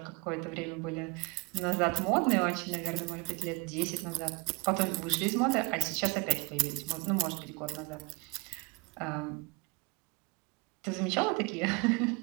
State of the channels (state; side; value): quieter; left; 26.1 dB